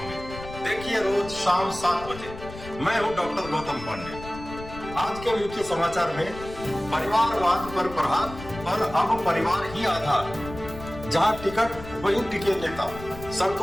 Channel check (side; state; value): left; noise; rumble, 13 dB below the sound